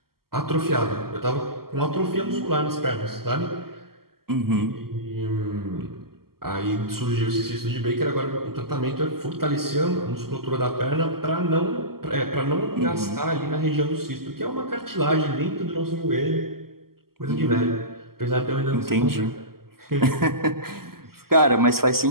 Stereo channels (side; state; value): left; late; 0.93 ms